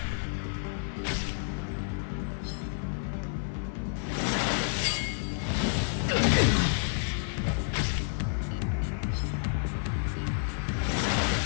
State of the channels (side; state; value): right; silent; 58 dB below the other